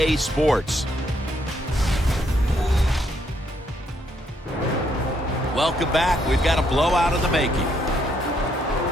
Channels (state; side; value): normal; both; correlation 0.73